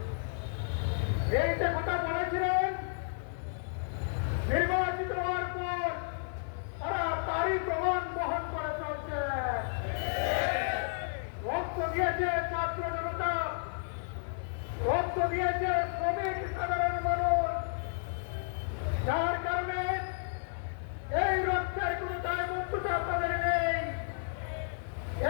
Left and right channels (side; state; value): right; silent; digital silence